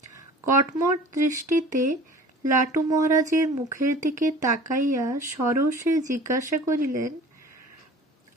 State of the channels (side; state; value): both; normal; correlation 0.44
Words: কটমট দৃষ্টিতে লাটু মহারাজের মুখের দিকে তাকাইয়া সরোষে জিজ্ঞাসা করিলেন,